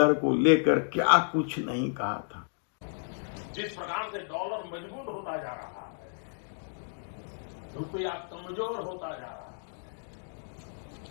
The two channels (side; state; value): right; silent; digital silence